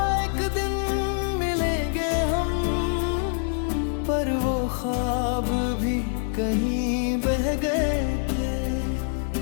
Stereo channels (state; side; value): silent; right; 62 dB below the other